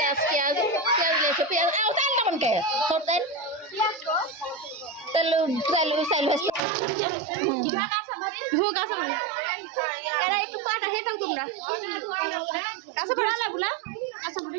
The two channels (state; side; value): drops out; left; at 6.6 s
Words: পেঁয়াজ পেঁয়াজ লেছে পেঁয়াজ তেল কেমন কে তেল তেল তেল চাইল এরা একটু পাটা খেয়ে থাক তোমরা কাছে পড়ালা বুলা কাছে পড়ে